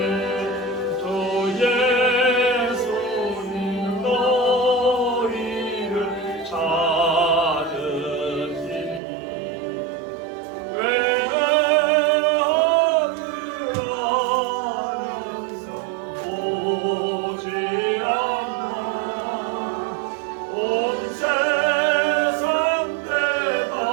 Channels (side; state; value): left; drops out; at 9.0 s